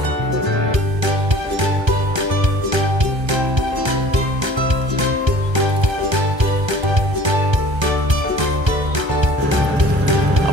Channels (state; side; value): late; left; 1.3 ms